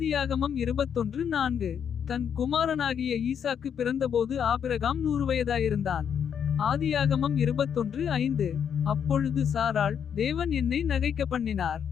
21:4. தன் குமாரனாகிய ஈசாக்கு பிறந்தபோது ஆபிரகாம் 100 வயதாயிருந்தான். ஆதியாகமம் 21:5. அப்பொழுது சாராள், தேவன் என்னை நகைக்க பண்ணினார்.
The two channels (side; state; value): right; quieter; 8.0 dB